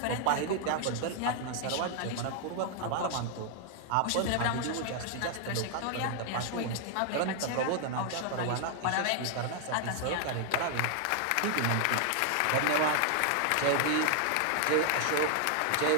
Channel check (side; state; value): both; different; correlation 0.00